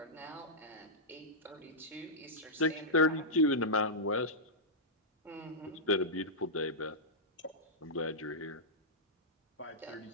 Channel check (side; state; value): both; normal; correlation -0.10